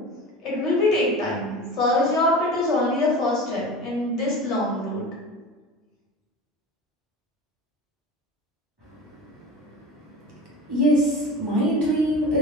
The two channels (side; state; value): both; normal; correlation 0.34